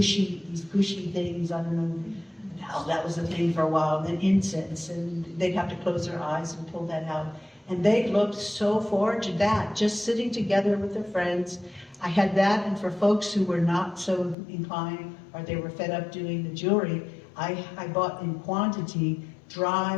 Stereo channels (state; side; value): drops out; right; at 14.4 s